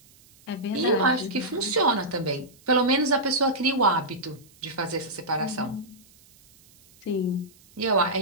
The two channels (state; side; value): noise; right; hiss, 28 dB below the sound